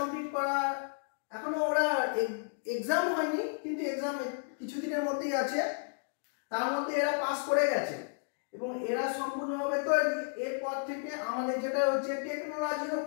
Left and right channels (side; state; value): right; silent; digital silence